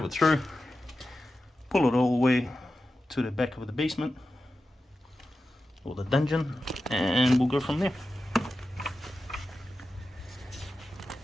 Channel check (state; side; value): normal; both; correlation 0.92